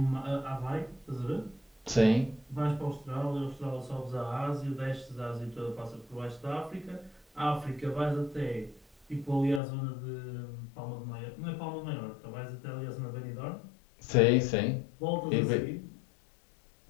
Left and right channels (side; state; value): right; drops out; at 9.6 s